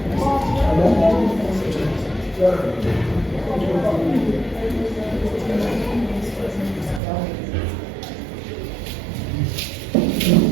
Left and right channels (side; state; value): left; drops out; at 7.0 s